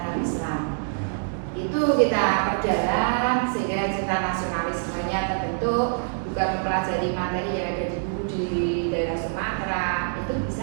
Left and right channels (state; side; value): silent; left; digital silence